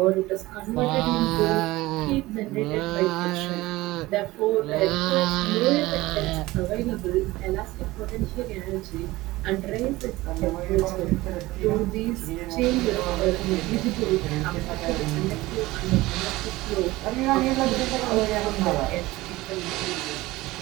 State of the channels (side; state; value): left; quieter; 19.1 dB